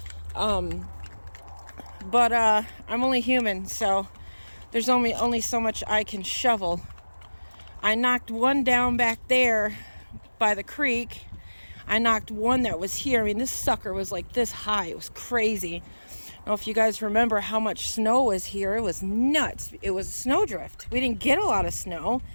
But I'm only human, so there's only so much I can shovel. I knocked one down back there by the creek. I knocked one that was here. I mean, this sucker was like this high. It was crazy. I don't know if you guys remember how much snow was here. It was nuts. It was a snowdrift. We didn't get a lot of snow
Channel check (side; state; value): both; inverted; correlation -1.00